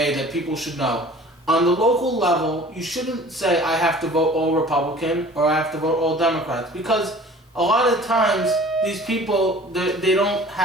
that people should know. On the local level, you shouldn't say I have to vote all Republican or I have to vote all Democrats, because a lot of times these people, they don't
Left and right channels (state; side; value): normal; both; correlation 0.47